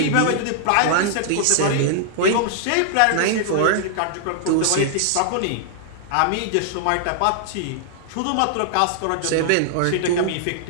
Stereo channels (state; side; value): different; both; correlation -0.01